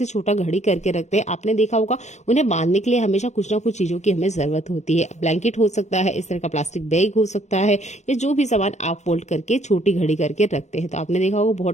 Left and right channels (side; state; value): right; late; 0.33 ms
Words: छोटा घड़ी करके रखते हैं। आपने देखा होगा उन्हें बांधने के लिए हमेशा कुछ ना कुछ चीजों की हमें जरूरत होती है। ब्लैंकेट हो सकता है, इस तरह का प्लास्टिक बैग हो सकता है, या जो भी सामान आप फोल्ड करके छोटी घड़ी करके रखते हैं। तो आपने देखा होगा